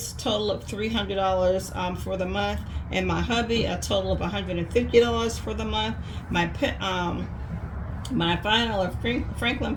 total of $300 for the month, and my hubby a total of $150 for the month. My final of Franklin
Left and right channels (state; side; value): identical; both; correlation 1.00